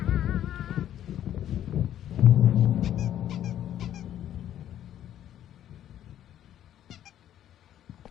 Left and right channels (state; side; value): quieter; right; 11.2 dB